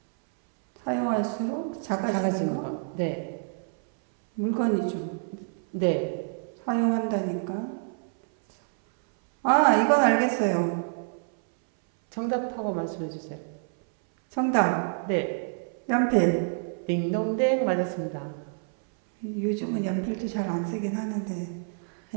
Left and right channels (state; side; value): silent; left; 60 dB below the other